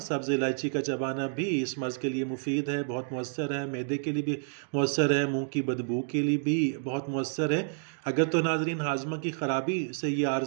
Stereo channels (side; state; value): left; silent; digital silence